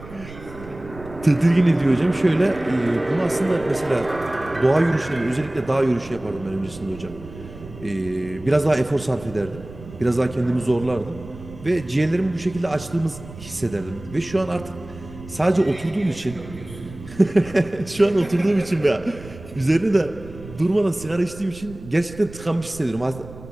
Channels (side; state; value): right; noise; rumble, 16 dB below the sound